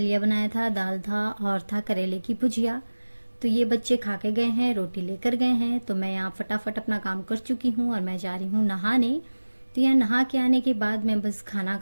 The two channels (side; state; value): both; inverted; correlation -1.00